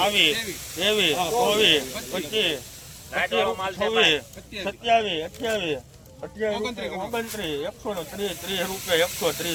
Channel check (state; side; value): identical; both; correlation 1.00